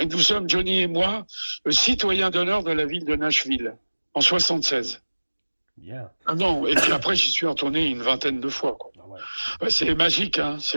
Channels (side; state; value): both; inverted; correlation -1.00